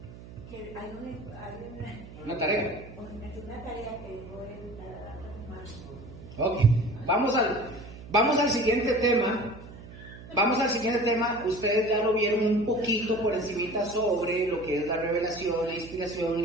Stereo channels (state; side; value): noise; right; hum, 16 dB below the sound